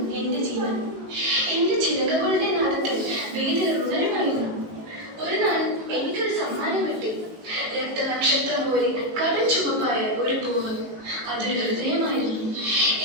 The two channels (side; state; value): left; late; 18 ms